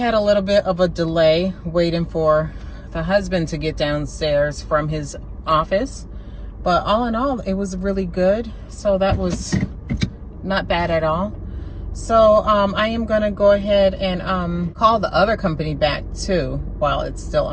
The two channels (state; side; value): identical; both; correlation 1.00